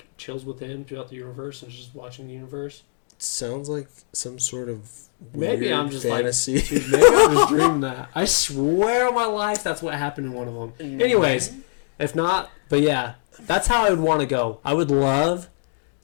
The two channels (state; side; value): silent; right; digital silence